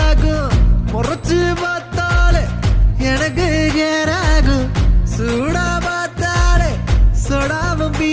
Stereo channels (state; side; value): identical; both; correlation 1.00